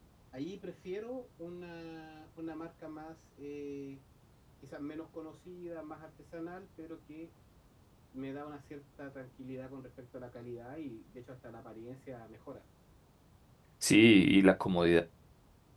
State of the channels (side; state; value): both; identical; correlation 1.00